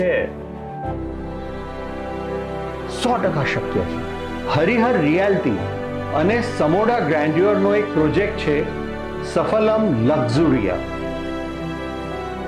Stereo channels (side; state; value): both; identical; correlation 1.00